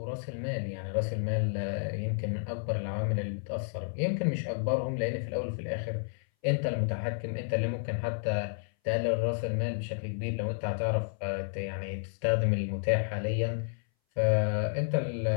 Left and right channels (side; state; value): right; silent; 57 dB below the other